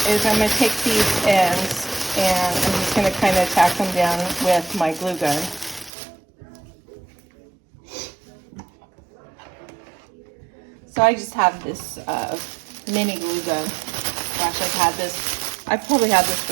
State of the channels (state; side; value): drops out; left; at 5.9 s